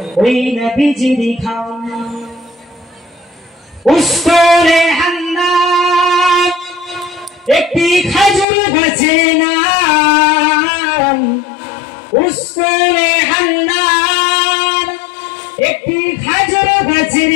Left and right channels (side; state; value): right; drops out; at 8.5 s